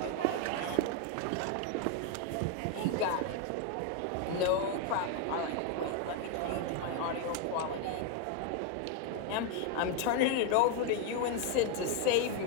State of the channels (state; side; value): different; both; correlation 0.01